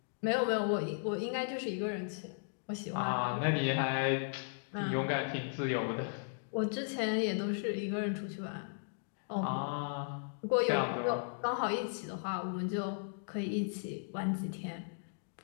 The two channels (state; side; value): silent; right; digital silence